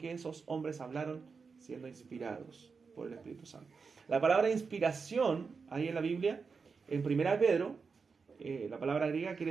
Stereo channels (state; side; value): quieter; left; 5.1 dB